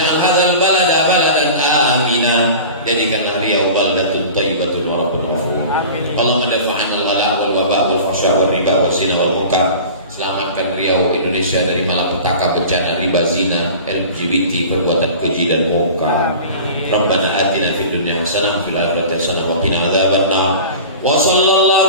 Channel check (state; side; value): inverted; both; correlation -0.38